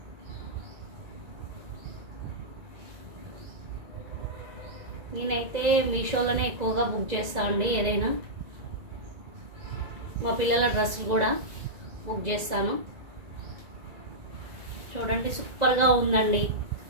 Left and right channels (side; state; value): left; late; 2.0 ms